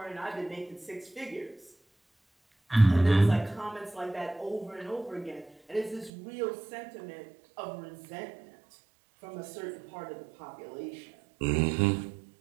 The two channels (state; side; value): drops out; left; at 6.1 s